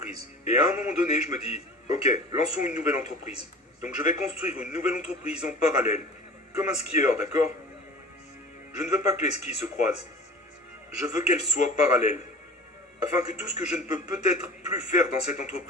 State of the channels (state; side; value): normal; both; correlation 0.40